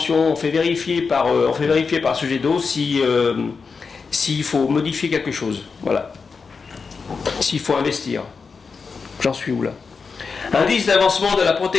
on fait vérifier par Sogedo s'il faut modifier quelque chose. Voilà. S'il faut investir. J'en suis où là? Indice d'avancement de la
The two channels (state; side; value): quieter; right; 5.1 dB